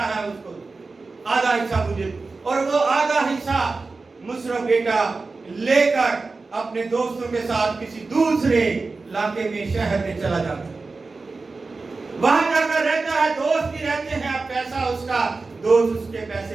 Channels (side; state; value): left; quieter; 3.9 dB